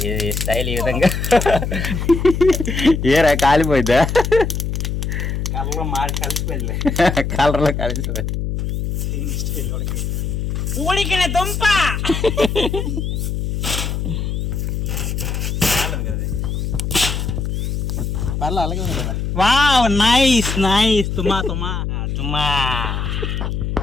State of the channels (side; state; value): left; noise; hum, 2 dB below the sound